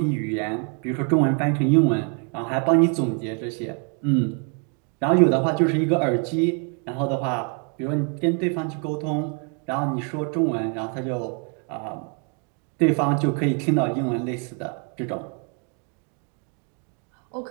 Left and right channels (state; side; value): quieter; left; 39.3 dB